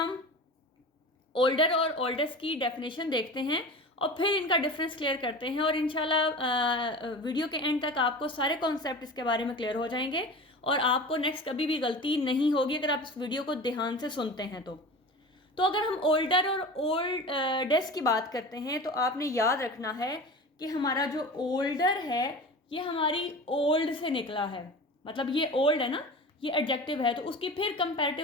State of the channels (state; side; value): normal; both; correlation 0.34